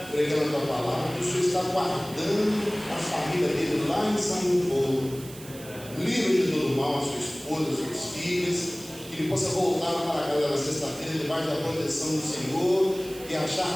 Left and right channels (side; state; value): right; noise; hiss, 17 dB below the sound